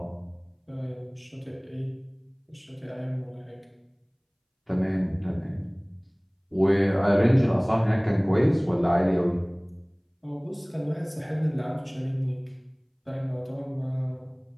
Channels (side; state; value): both; identical; correlation 1.00